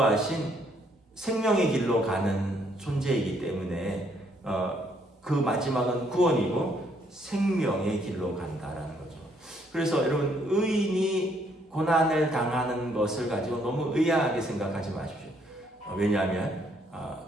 생명의 길로 가는 존재이기 때문에 그 마지막은 구원이고 생명의 길로 간다라는 거죠. 그래서 여러분, 의인이 고난을 당하는 것을 가지고 너무 의아하게 생각하지 마십시오. 왜냐하면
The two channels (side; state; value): both; normal; correlation 0.69